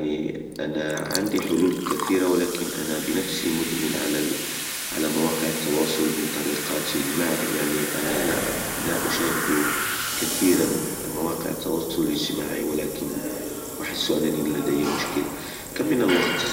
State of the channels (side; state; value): both; identical; correlation 1.00